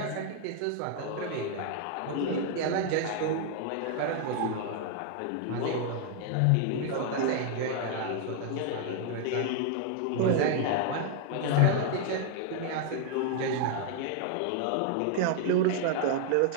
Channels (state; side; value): different; both; correlation 0.00